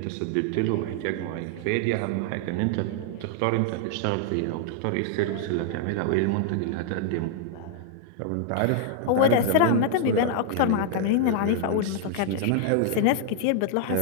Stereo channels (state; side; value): different; both; correlation -0.01